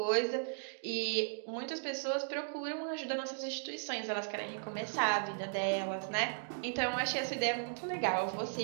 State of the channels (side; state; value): left; silent; digital silence